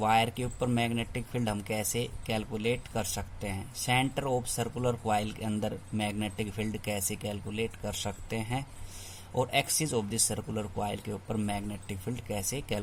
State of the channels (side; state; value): both; identical; correlation 1.00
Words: के ऊपर मैग्नेटिक फील्ड हम कैसे कैलकुलेट कर सकते हैं, सेंटर ऑफ सर्कुलर कॉइल के अंदर मैग्नेटिक फील्ड कैसे कैलकुलेट कर सकते हैं, और axis of the circular coil के ऊपर मैग्नेटिक फील्ड कैसे